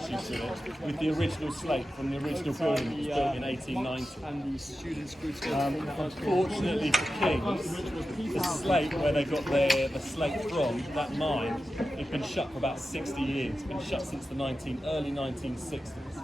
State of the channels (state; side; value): normal; both; correlation 0.92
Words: with it, with the original slate from the original building that was built in 1890. And the students unfortunately for Kings, the slate where they got the slate from, that mine, it's been shut for about 60 years. It's been shut since the early 1960s.